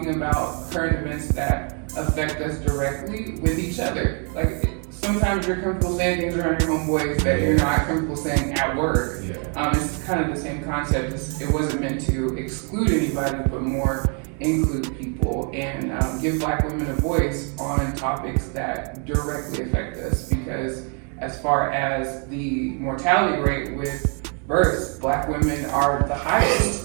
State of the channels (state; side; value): quieter; left; 39.5 dB